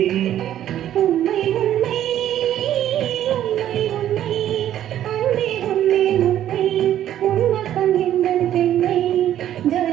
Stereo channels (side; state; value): left; quieter; 11.6 dB